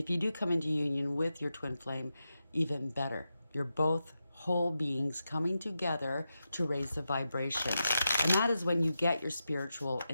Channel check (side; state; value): both; inverted; correlation -0.89